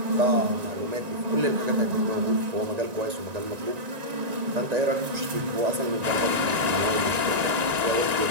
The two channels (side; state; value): left; late; 1.9 ms